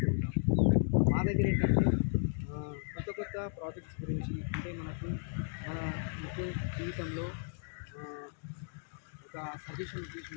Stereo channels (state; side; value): silent; right; digital silence